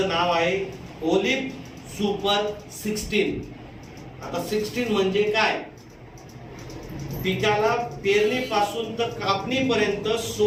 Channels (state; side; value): identical; both; correlation 1.00